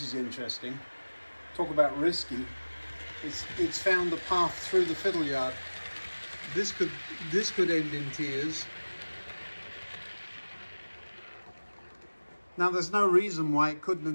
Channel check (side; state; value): both; inverted; correlation -1.00